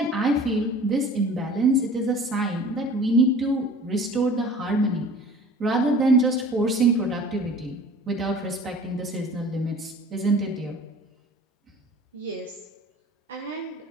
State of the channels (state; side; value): normal; both; correlation 0.45